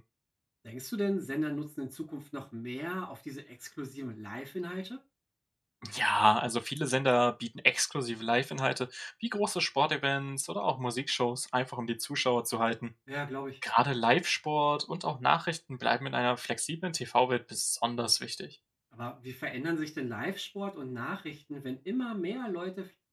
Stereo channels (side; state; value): both; identical; correlation 1.00